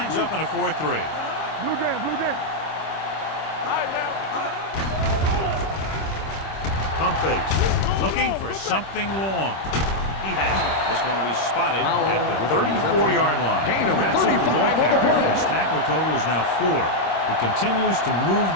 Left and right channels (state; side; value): late; right; 26 ms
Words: up in a 4-3. Blue jam, blue jam. Pump fakes. Looking for something long. He has it. This one will be spotted at the 34-yard line. He wraps up the ball carrier. His tackle total is now 4. He continues to move